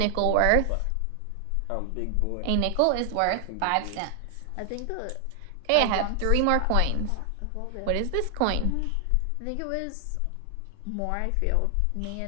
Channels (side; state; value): both; different; correlation 0.00